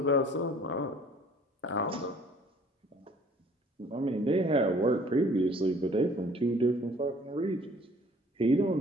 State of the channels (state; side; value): normal; both; correlation 0.54